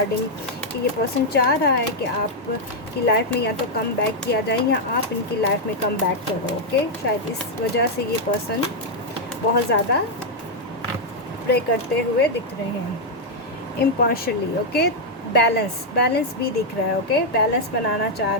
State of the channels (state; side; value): normal; both; correlation -0.02